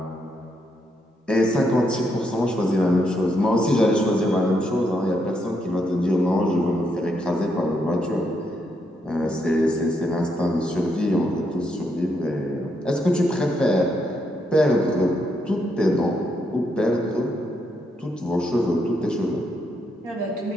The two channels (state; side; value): normal; both; correlation 0.78